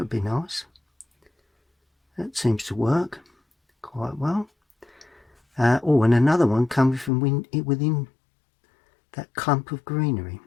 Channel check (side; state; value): right; drops out; at 7.1 s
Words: be nice. That seems to work quite well. And another one coming from within that clump of greenery.